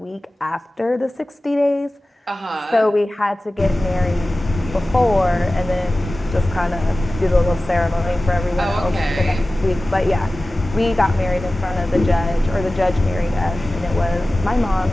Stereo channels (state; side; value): normal; both; correlation 0.97